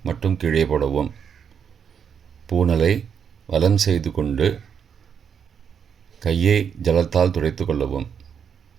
மட்டும் கீழே போடவும். பூனலை வலம் செய்து கொண்டு கையை ஜலத்தால் துடைத்து கொள்ளவும்.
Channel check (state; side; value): quieter; left; 7.4 dB